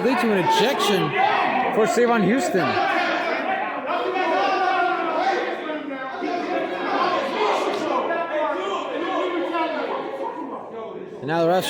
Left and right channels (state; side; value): identical; both; correlation 1.00